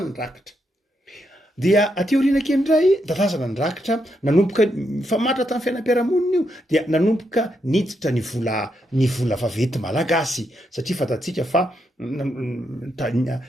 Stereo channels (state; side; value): normal; both; correlation 0.81